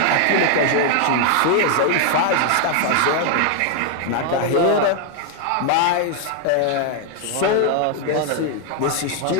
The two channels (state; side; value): different; both; correlation 0.00